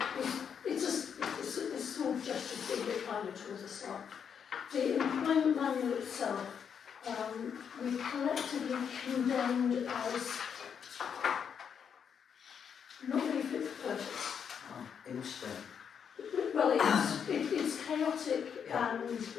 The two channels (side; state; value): right; quieter; 7.4 dB